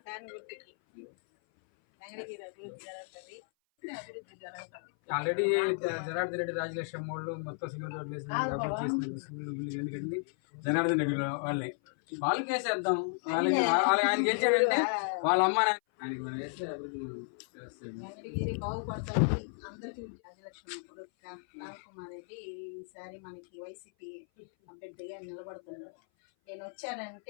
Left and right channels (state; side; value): silent; right; 55 dB below the other